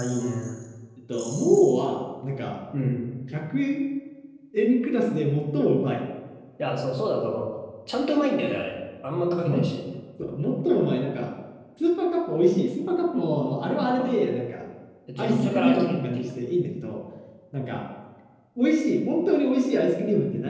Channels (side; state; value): both; identical; correlation 1.00